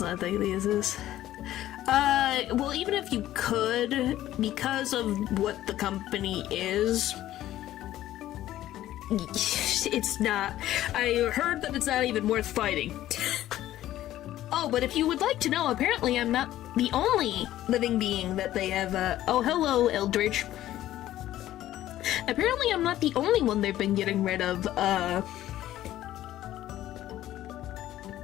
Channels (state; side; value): quieter; right; 13.7 dB